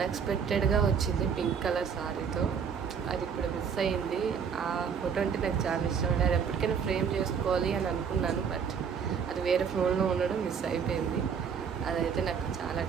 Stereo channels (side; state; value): left; quieter; 6.8 dB